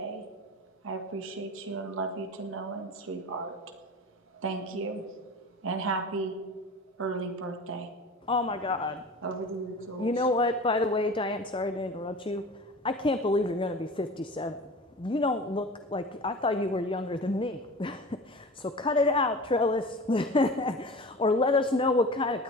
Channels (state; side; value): normal; both; correlation 0.36